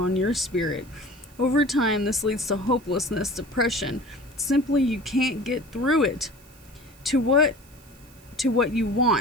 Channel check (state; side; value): noise; right; hiss, 26 dB below the sound